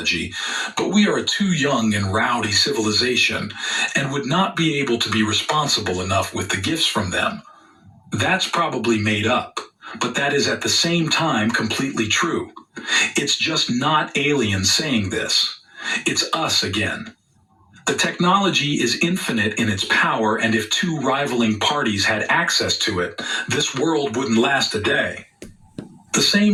but we are a too young and rowdy civilization and would not be able to be responsible enough with the gifts from them. That's probably made up, but that is at the same time completely true. It's just not aliens saying this. It's us again. The technology is infinite in its power, and if two rivaling parties had access to it, this world wouldn't last a day. The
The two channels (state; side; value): identical; both; correlation 1.00